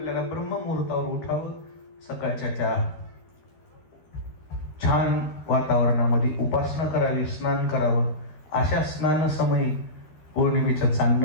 ब्रह्ममुहूर्तावर उठावं, सकाळच्या त्या छान वातावरणामध्ये उपासना करावी, स्नान करावं. अशा स्नान समयी पौर्णिमेचं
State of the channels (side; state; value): right; late; 13 ms